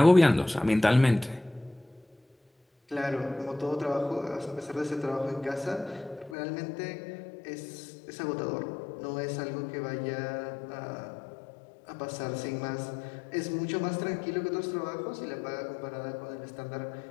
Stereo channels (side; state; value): right; drops out; at 6.4 s